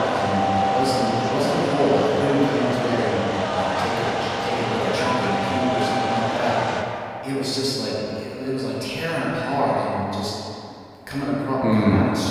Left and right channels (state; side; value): identical; both; correlation 1.00